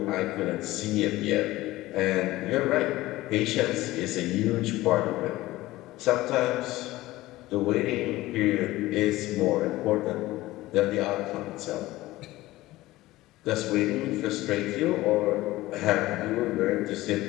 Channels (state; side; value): quieter; right; 17.7 dB